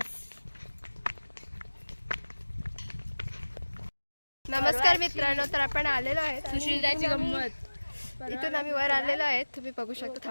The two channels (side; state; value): both; inverted; correlation -1.00